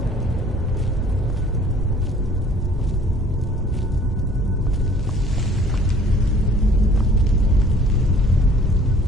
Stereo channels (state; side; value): normal; both; correlation 0.54